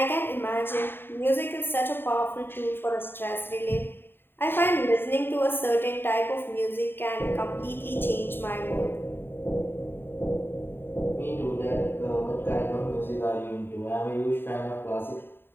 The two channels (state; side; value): late; right; 0.10 ms